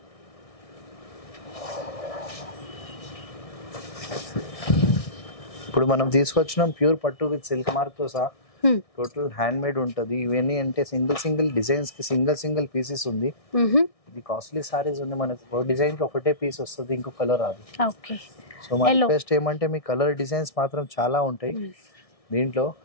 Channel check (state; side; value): late; right; 1.6 ms